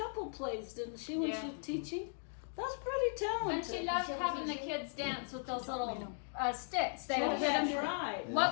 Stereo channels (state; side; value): silent; right; digital silence